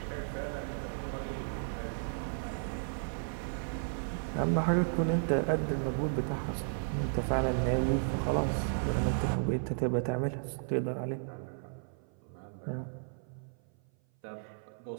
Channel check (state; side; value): silent; left; 55 dB below the other